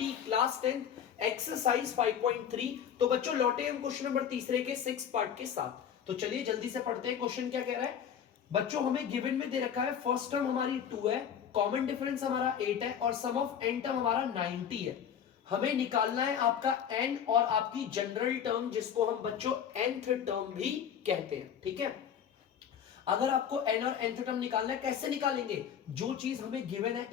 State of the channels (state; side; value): quieter; right; 8.5 dB